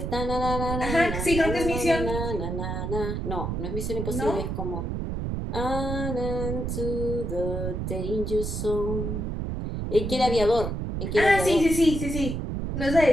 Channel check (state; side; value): noise; right; rumble, 3 dB below the sound